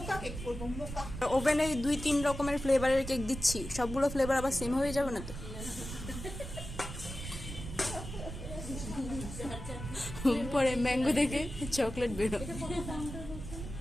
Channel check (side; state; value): right; noise; rumble, 9 dB below the sound